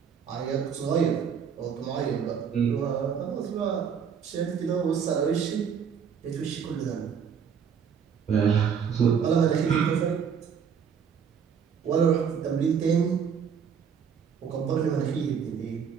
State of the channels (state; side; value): quieter; left; 7.1 dB